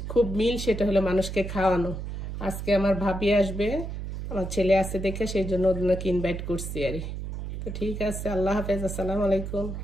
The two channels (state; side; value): noise; right; hum, 6 dB below the sound